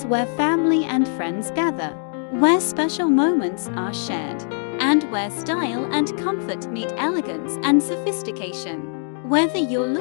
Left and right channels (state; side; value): silent; right; digital silence